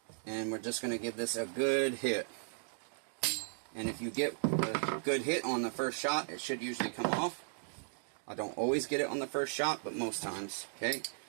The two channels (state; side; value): silent; left; digital silence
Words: and we're just going to give this a good hit. And if you get a good hit on the first shot, it should usually come off. I don't always get it on the first shot, but most times. Okay,